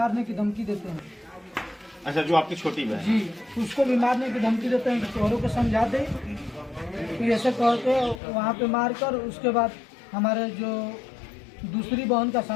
की धमकी देते हैं। अच्छा, जो आपकी छोटी बहन है। जी, उसको भी मारने की धमकी देते हैं कि तोहरों को समझा दे, तो ऐसे करके वहाँ पे मार कर उसके बाद हमारे जो दूसरी बहन का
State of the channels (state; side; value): drops out; right; at 8.2 s